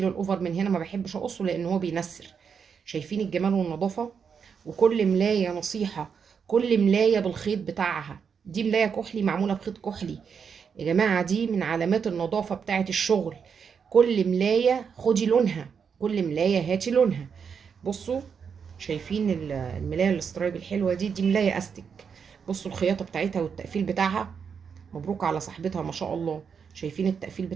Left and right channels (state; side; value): quieter; left; 6.5 dB